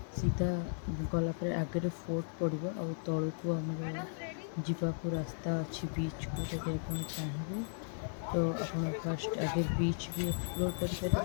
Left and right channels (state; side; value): silent; right; digital silence